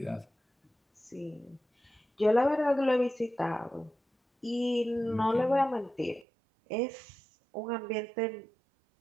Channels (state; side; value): drops out; left; at 6.2 s